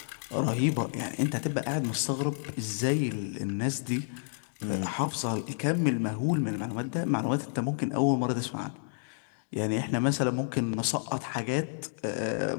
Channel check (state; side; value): silent; right; digital silence